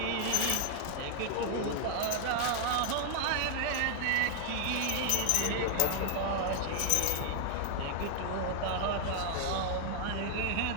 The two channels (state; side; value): different; both; correlation 0.00